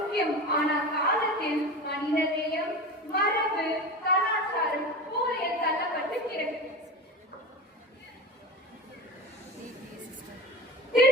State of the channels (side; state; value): both; normal; correlation 0.29